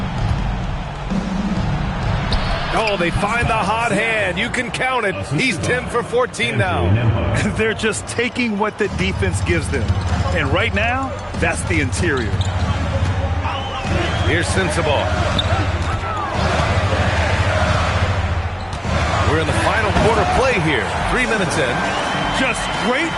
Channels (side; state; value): both; identical; correlation 1.00